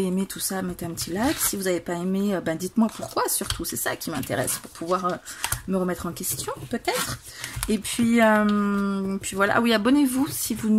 aimé tout ça, mettez un petit like. Si vous n'avez pas aimé, dites-moi pourquoi, surtout. C'est ça qui m'intéresse, pour pouvoir me remettre en question, peut-être. Et puis voilà. Ah oui, abonnez-vous si vous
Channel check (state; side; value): identical; both; correlation 1.00